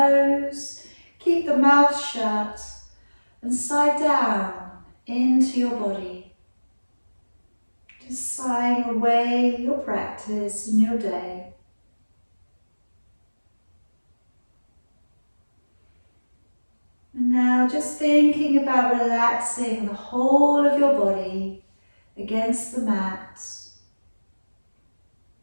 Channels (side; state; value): both; inverted; correlation -1.00